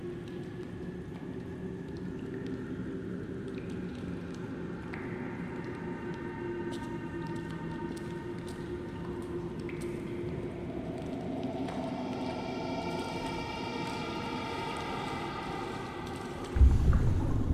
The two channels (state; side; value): identical; both; correlation 1.00